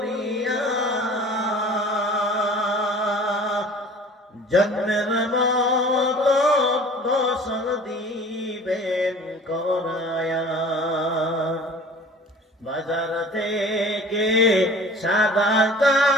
জন্মের মতো গোসল দিবেন করায়া, বাজার থেকে সাদা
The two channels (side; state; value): both; normal; correlation 0.45